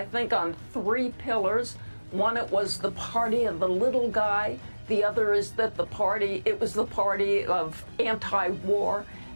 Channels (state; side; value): inverted; both; correlation -1.00